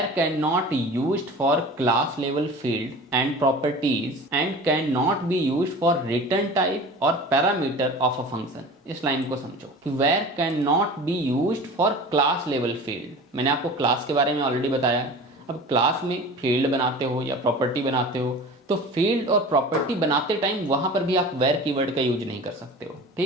cannot used for class level field and properties and cannot be used for return type or parameter of a function। इस लाइन को समझो कि where cannot be used for class level field, मैंने आपको क्लास के बारे में ऑलरेडी बताया है। अब क्लास में फील्ड बनाते हो या प्रॉपर्टी बनाते हो तो फील्ड और प्रॉपर्टी बनाते टाइम वहां पर भी आप वेयर कीवर्ड का यूज नहीं कर सकते हो,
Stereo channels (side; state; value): both; normal; correlation 0.38